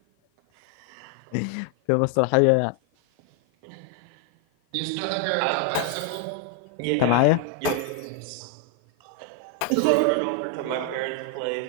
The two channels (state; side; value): different; both; correlation 0.00